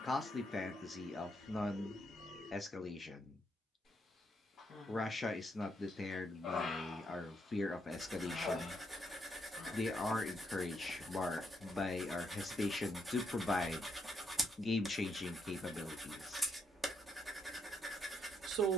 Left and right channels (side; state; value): both; normal; correlation 0.76